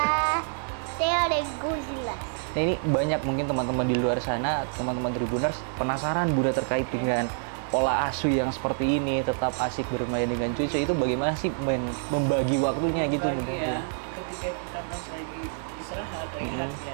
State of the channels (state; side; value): silent; left; digital silence